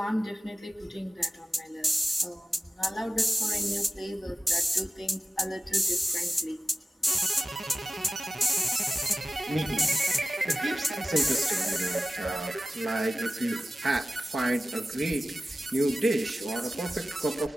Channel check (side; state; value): both; normal; correlation 0.96